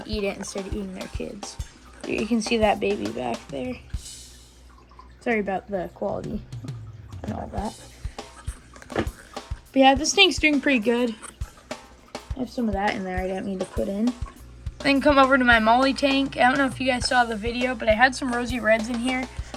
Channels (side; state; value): both; identical; correlation 1.00